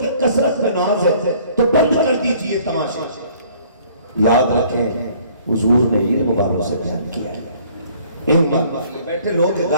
کی کثرت میں ناز ہے تو بند کر دیجئے تماشا۔ یاد رکھیں حضور نے علم والوں سے بیان کیا ہے، علم والے بیٹھے لوگ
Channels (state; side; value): inverted; both; correlation -0.57